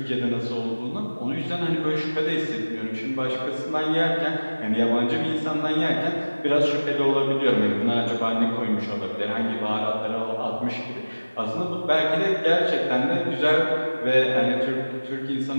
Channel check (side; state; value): both; inverted; correlation -1.00